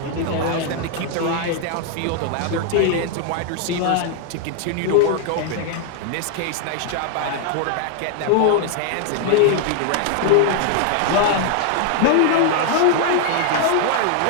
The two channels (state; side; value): different; both; correlation 0.00